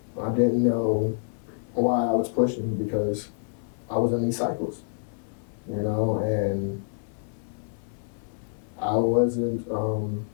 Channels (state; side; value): silent; right; 60 dB below the other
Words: I didn't know why I was pushing because I was in these cycles, and I wasn't